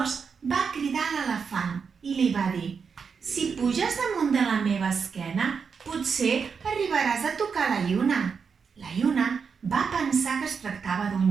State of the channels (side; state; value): left; quieter; 5.9 dB